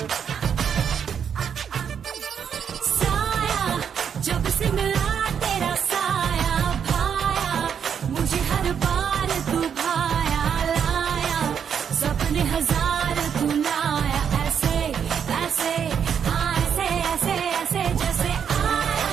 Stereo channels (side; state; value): left; quieter; 7.7 dB